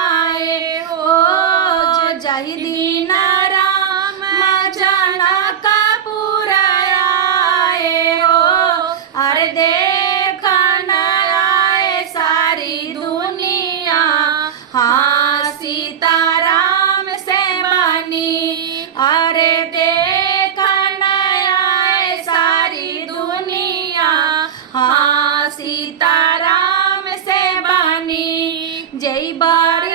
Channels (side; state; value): left; quieter; 8.5 dB